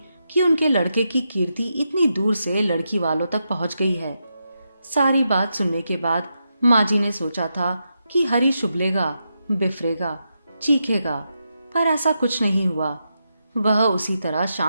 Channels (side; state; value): both; inverted; correlation -0.85